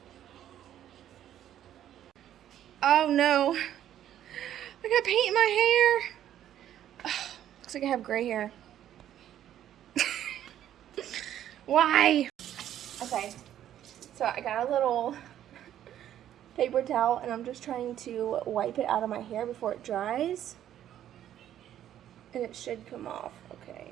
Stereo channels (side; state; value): left; quieter; 11.2 dB